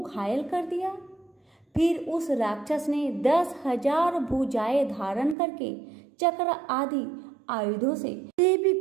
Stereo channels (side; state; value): left; drops out; at 5.4 s